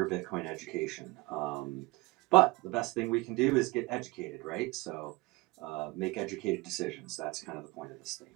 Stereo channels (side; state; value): left; quieter; 22.8 dB